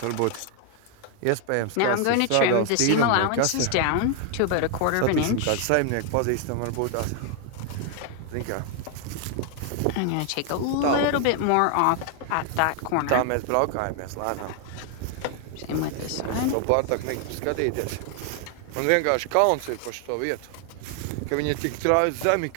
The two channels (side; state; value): both; different; correlation 0.00